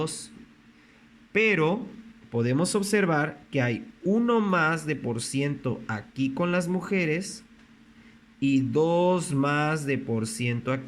Pero podemos observar que hay 1 más de por ciento aquí con las mujeres y 2 más de por ciento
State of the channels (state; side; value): identical; both; correlation 1.00